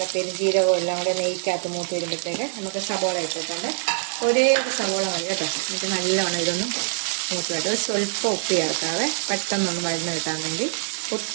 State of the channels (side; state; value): left; silent; digital silence